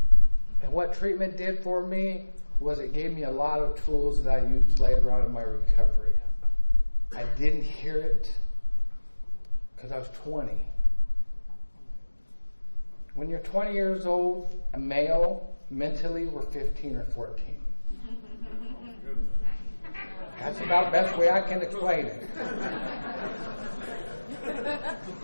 And what treatment did for me was it gave me a lot of tools that I used later on in my recovery. I didn't hear it because I was 20. When you're 20 years old, a male, mentally we're 15 or 14. That's about the best way I can explain it.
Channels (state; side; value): inverted; both; correlation -1.00